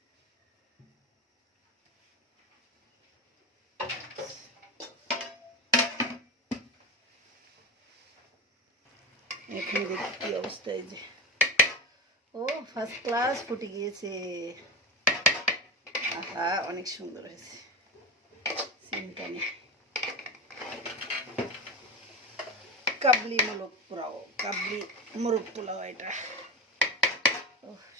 এখন দেখি কি অবস্থা। এই যে ও ফার্স্ট ক্লাস ফুটে গিয়েছে। আহা, অনেক সুন্দর হয়েছে। চিন্তা নেই। কাবলি মোরগ পোলাও, কাবলি মোরগ পোলাও এটা। ও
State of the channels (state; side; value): normal; both; correlation 0.22